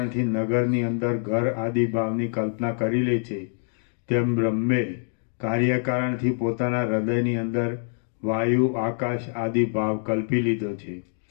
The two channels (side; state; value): right; silent; 62 dB below the other